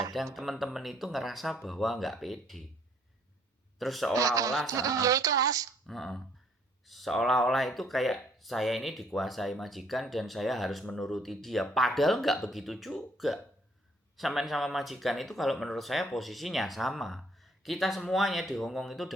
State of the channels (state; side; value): normal; both; correlation 0.63